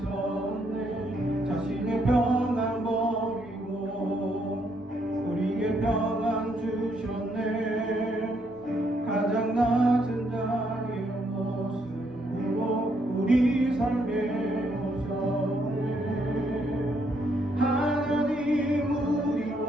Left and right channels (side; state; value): both; normal; correlation 0.73